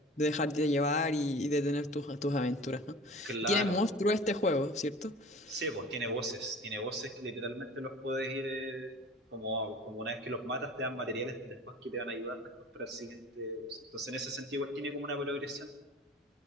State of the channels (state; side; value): normal; both; correlation 0.42